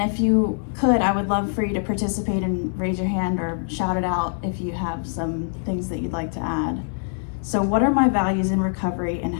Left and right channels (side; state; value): right; silent; digital silence